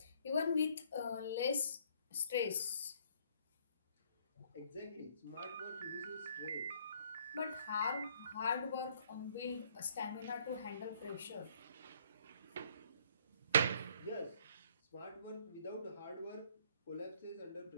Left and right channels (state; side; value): inverted; both; correlation -0.63